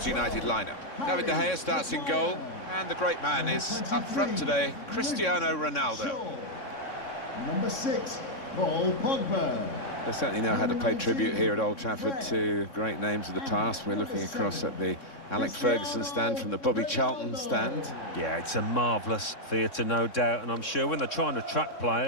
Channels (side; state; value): right; late; 3.6 ms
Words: United lineup. David De Gea starts in goal, and the great man is up front today, Cristiano Ronaldo. Number 6, Paul Pogba. They certainly know how to pay tribute here at Old Trafford to great names of the past. We're looking across at the Alex Ferguson stand from the Bobby Charlton stand. Yeah, it's a marvellous theatre, no doubt, and I'm sure when they're trying to attract